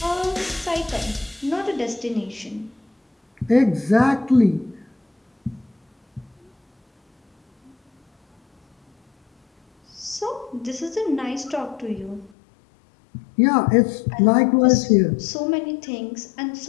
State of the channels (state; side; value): drops out; right; at 12.3 s